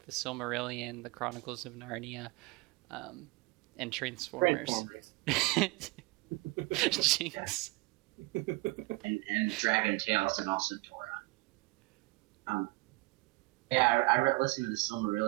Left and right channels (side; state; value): left; quieter; 23.7 dB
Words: the Silmarillion, the Chronicles of Narnia, and Transformers. Jinx. and Dragon Tales and also Torah. Yeah, I listened to the